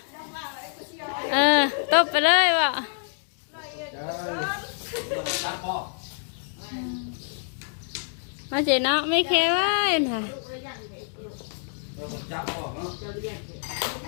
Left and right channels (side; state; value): right; silent; digital silence